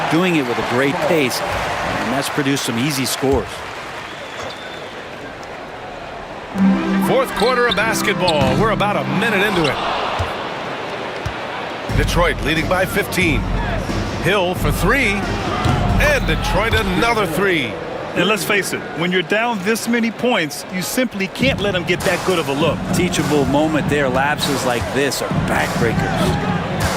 doing it with a great pace, and that's produced some easy scores. Fourth quarter of basketball. We're about a minute into it. Detroit leading by 15. Hill for three. And Detroit another three. And let's face it, when you're down this many points, you simply can't let them get that good of a look. Teachable moment there. Lapses like this are backbreakers.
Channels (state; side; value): identical; both; correlation 1.00